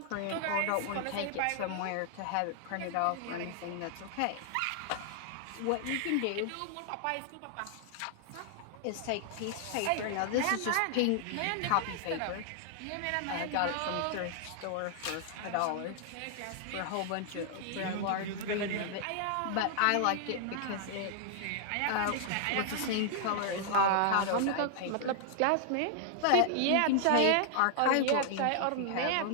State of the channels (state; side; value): different; both; correlation 0.00